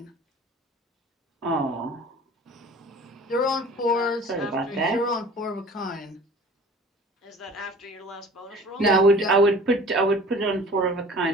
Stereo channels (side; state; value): both; normal; correlation 0.45